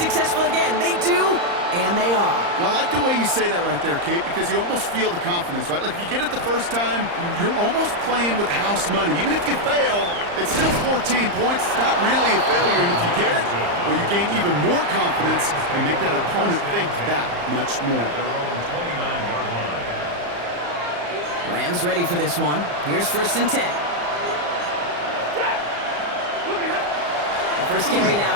again. They do, and they are. And I like the way you say that right there, Kate, because you almost feel the confidence, right? Like if you get it the first time, you're almost playing with house money. Even if you fail, it's still 14 points. It's not really a failure. And if you get it, well, you gain even more confidence and make that opponent think that much more. Rams ready for this one. Here's first and 10. The first carry now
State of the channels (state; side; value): late; left; 35 ms